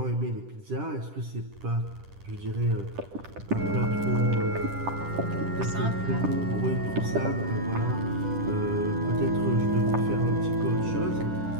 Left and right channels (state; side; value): late; left; 10 ms